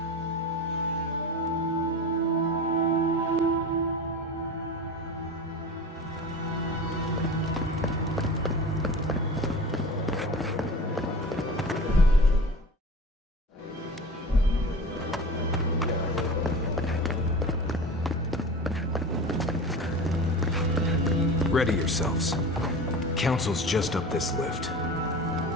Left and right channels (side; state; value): both; normal; correlation 0.34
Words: Ready yourselves. Council's just up this lift.